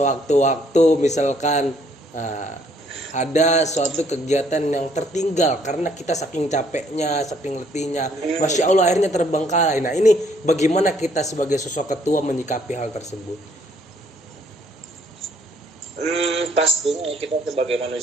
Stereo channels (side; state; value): both; normal; correlation 0.66